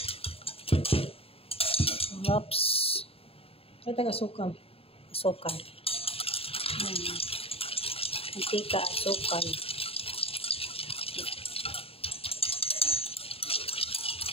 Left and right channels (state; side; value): late; right; 0.28 ms